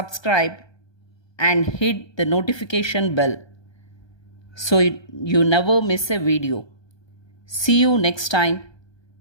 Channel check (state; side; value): late; right; 1.2 ms